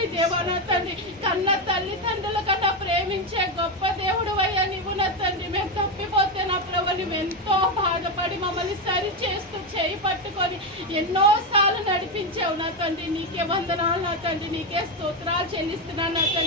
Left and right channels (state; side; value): normal; both; correlation 0.10